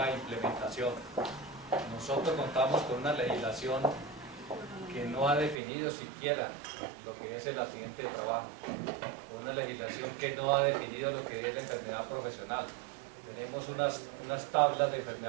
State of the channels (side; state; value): left; drops out; at 5.6 s